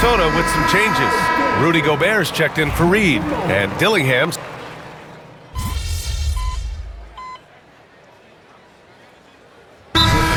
with some changes. Rudy Gobert's checked in for Reed. And Dillingham's.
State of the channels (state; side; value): identical; both; correlation 1.00